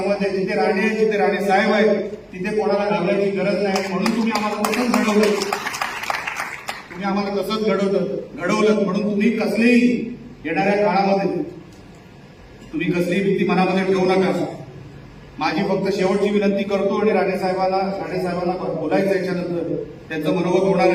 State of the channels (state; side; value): identical; both; correlation 1.00